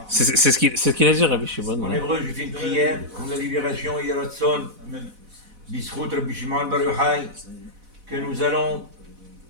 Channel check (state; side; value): late; left; 4.0 ms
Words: C'est ce qu'il a dit, Rabbi Shimon. En hébreu, je fais une prière pour la libération Yeratzon, Bisrout Rabbi Shimon Bar Yochai, que nous allons